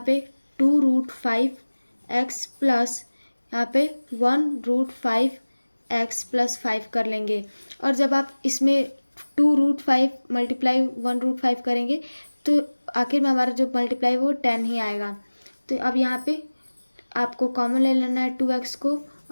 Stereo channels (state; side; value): inverted; both; correlation -1.00